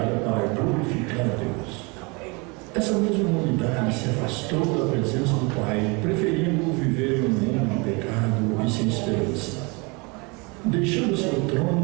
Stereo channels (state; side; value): quieter; left; 28.9 dB